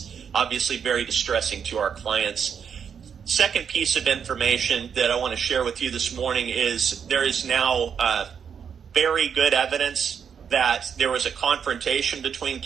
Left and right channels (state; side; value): quieter; left; 7.3 dB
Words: obviously very distressing to our clients. Second piece of information that I want to share with you this morning is there is now very good evidence that there was a confrontation between